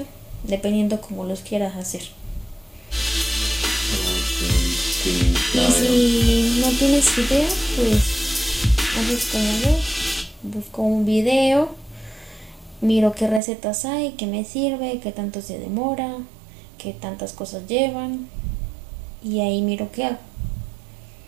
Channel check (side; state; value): left; drops out; at 13.4 s